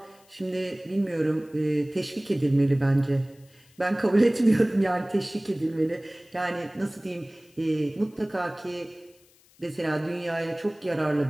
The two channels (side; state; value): left; noise; hiss, 30 dB below the sound